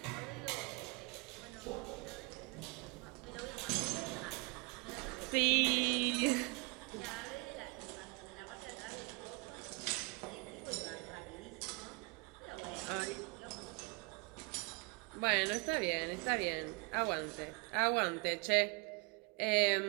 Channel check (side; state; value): left; quieter; 29.7 dB